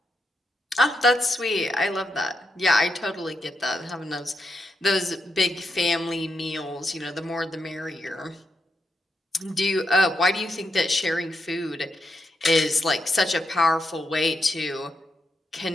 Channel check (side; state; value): both; normal; correlation 0.83